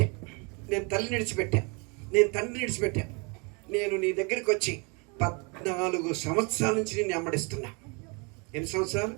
నేను తల్లిని విడిచిపెట్టా, నేను తండ్రిని విడిచిపెట్టా. నేను నీ దగ్గరికి వచ్చి 14 సంవత్సరాల నుంచి నేను వెంబడిస్తున్నా. ఎన్ని సంవత్సరాలు?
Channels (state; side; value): quieter; left; 32.2 dB